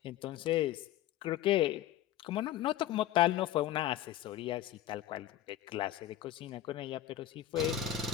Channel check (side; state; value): right; quieter; 12.5 dB